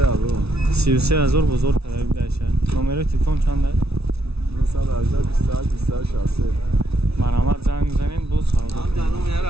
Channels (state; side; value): late; left; 0.79 ms